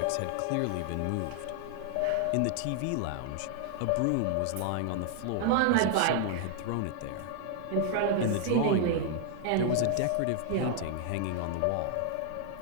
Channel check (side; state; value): both; different; correlation 0.00